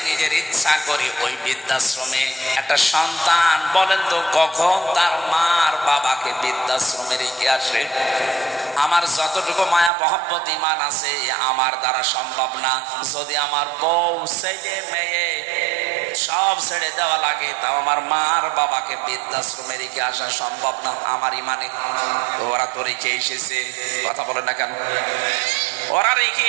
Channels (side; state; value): left; drops out; at 9.9 s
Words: নিজের ইচ্ছা করে ওই বৃদ্ধাশ্রমে। একটা সন্তান বলেন তো কখন তার মার বাবাকে বৃদ্ধাশ্রমে রেখে আসে? আমার যতটুকু মায়া মহব্বত ঈমান আছে আমার দ্বারা সম্ভব না। যদি আমার বউ ছেলে মেয়ে সব ছেড়ে দেওয়া লাগে, তাও আমার মার বাবাকে বৃদ্ধাশ্রমে রেখে আসা সম্ভব না আমার ঈমানে। ওরা তো রেখে এসেছে, কথা বলে না কেন? ওরা রেখে